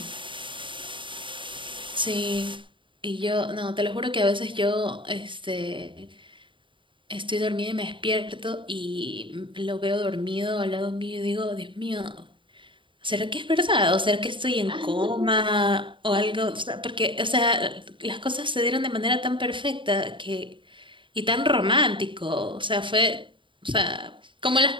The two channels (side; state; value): left; late; 0.24 ms